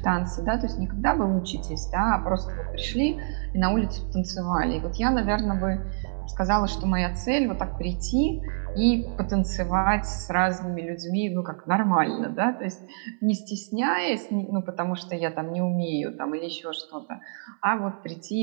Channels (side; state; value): left; silent; 61 dB below the other